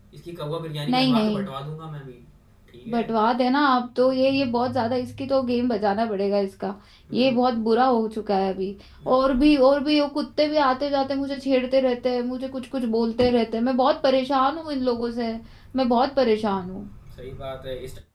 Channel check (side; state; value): both; identical; correlation 1.00